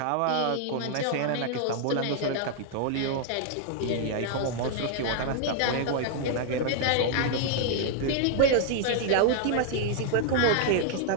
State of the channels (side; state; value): both; different; correlation 0.00